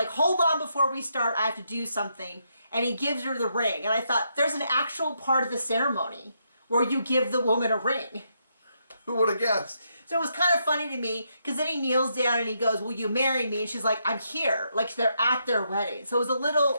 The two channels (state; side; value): inverted; both; correlation -0.79